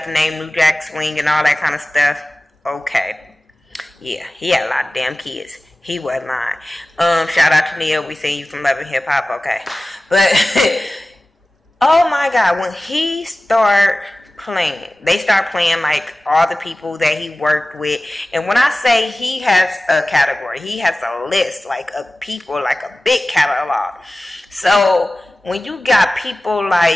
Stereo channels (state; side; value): normal; both; correlation 0.96